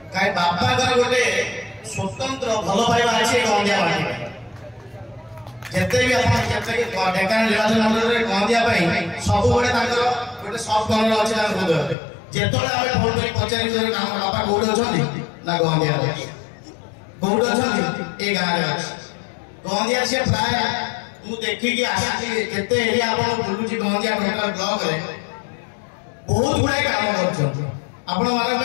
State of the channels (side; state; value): right; drops out; at 12.0 s